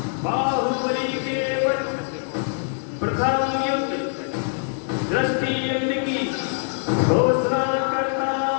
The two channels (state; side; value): silent; right; 63 dB below the other